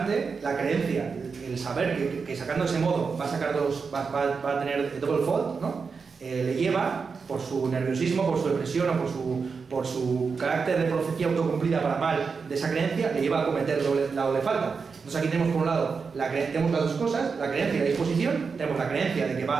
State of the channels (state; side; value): quieter; left; 5.2 dB